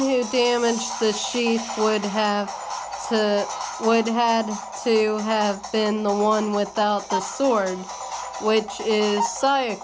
damaged the sheath would had to have been the one without the sword, which is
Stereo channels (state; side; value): identical; both; correlation 1.00